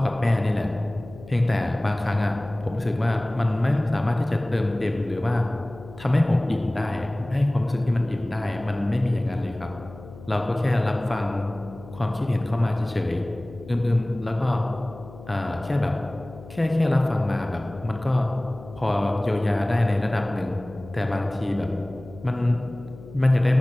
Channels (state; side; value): noise; left; hum, 17 dB below the sound